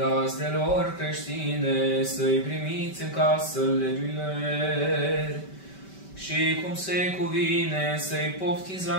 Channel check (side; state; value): right; late; 5.2 ms